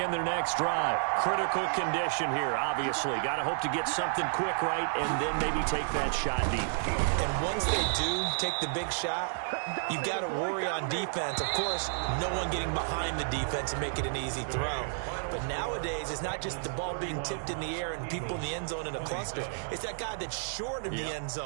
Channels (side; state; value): left; silent; 57 dB below the other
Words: their next drive. Critical condition here, obviously. Got to hope to get something quick right and then maybe take that shot deep. And once they do take the big shot, you've got to worry on defense. Of course, no one getting behind the defense and make it an easy throw. But But nowadays, it's not just the ball being tipped in the air and people in the end zone in a cluster. It's that guy that's short of the end